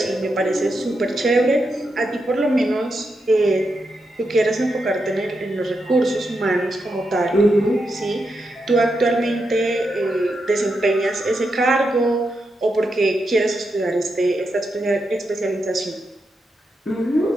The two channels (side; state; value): both; normal; correlation 0.85